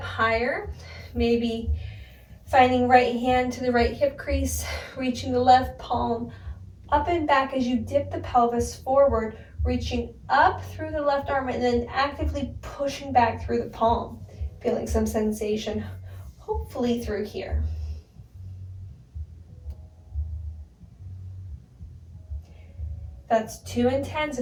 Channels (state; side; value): identical; both; correlation 1.00